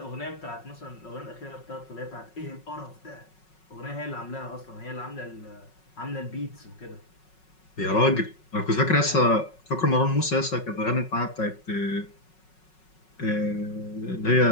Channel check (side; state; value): right; late; 5.4 ms